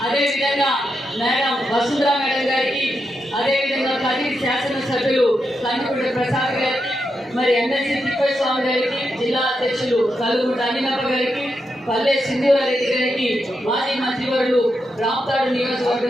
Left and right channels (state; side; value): normal; both; correlation 0.85